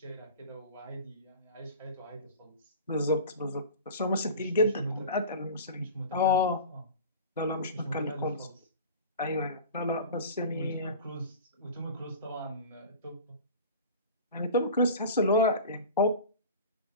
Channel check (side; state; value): both; inverted; correlation -0.35